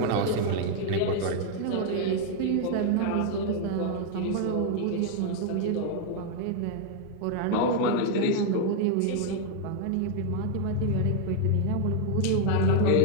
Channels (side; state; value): both; different; correlation 0.00